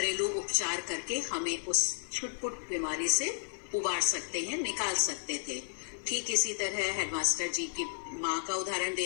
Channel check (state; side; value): silent; right; 56 dB below the other